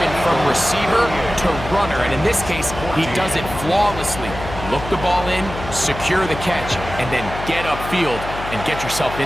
from receiver to runner. And in this case, he does it flawlessly. Look the ball in, secure the catch, and then get upfield and get yourself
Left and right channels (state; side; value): noise; left; hum, 10 dB below the sound